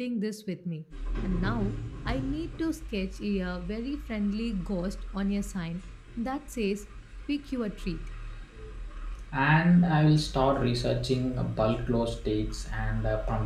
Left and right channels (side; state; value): both; identical; correlation 1.00